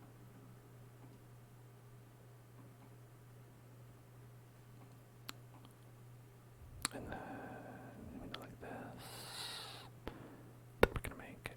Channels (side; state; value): both; identical; correlation 1.00